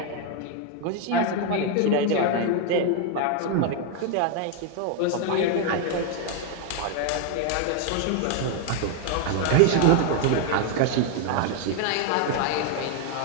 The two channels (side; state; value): both; different; correlation 0.01